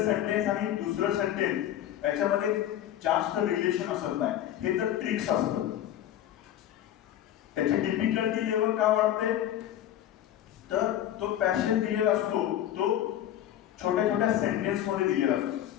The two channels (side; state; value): right; quieter; 11.7 dB